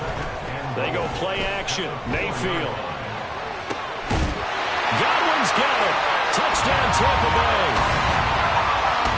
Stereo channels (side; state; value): both; identical; correlation 1.00